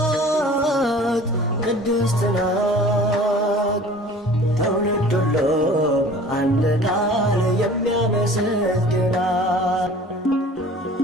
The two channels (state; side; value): normal; both; correlation 0.46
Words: ቅድስት ናት ትውልድ ሁሉ በአንድ ቃል የሚያመሰግናት